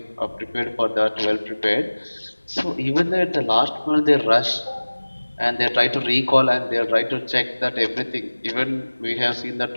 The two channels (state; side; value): inverted; both; correlation -1.00